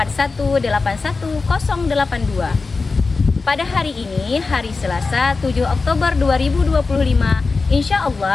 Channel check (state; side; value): quieter; right; 4.1 dB